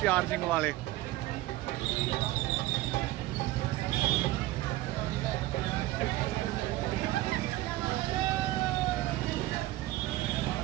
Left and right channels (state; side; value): quieter; left; 16.7 dB